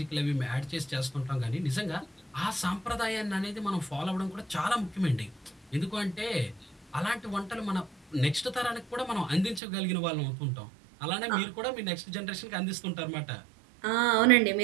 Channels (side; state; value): left; drops out; at 9.6 s